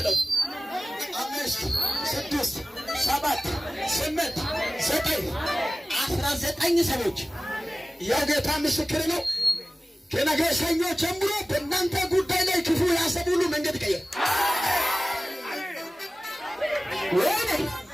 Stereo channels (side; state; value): both; normal; correlation 0.97